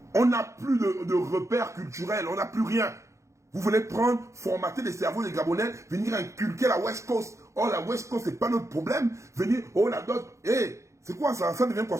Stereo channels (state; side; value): late; left; 0.14 ms